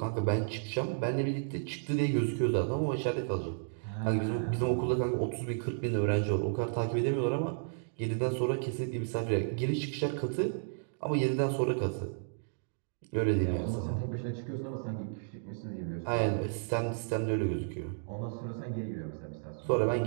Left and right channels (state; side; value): silent; left; digital silence